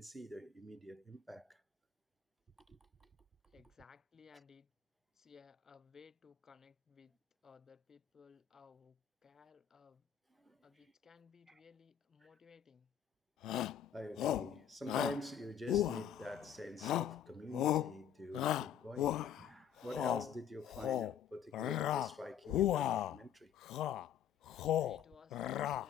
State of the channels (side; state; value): right; quieter; 9.4 dB